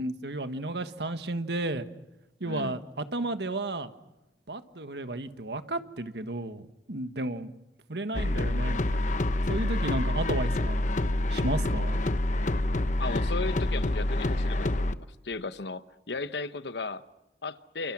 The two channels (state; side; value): normal; both; correlation 0.63